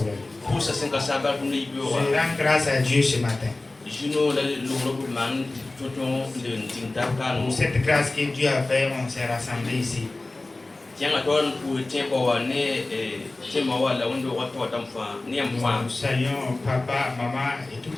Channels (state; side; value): quieter; right; 3.0 dB